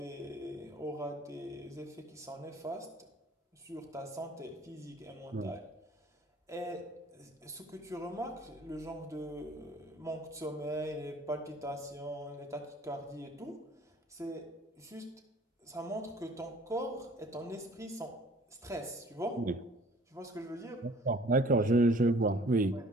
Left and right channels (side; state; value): both; normal; correlation 0.52